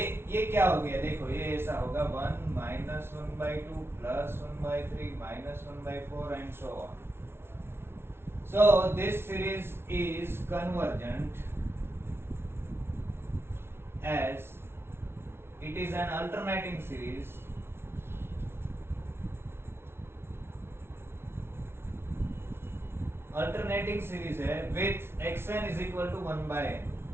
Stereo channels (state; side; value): late; left; 0.12 ms